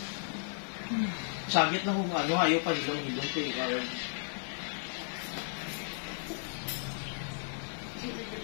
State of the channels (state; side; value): silent; right; 55 dB below the other